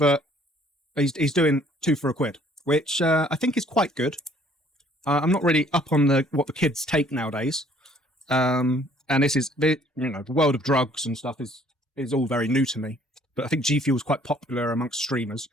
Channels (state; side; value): normal; both; correlation 0.59